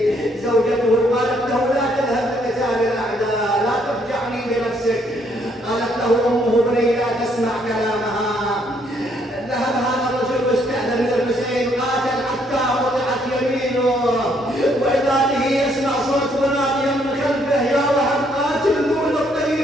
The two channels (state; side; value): normal; both; correlation 0.69